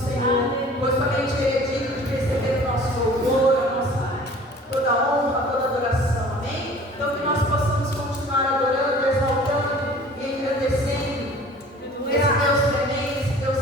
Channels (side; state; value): both; normal; correlation 0.47